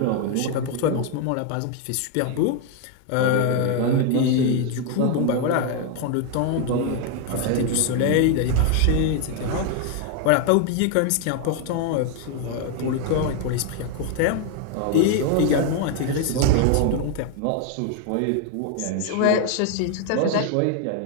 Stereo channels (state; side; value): different; both; correlation 0.00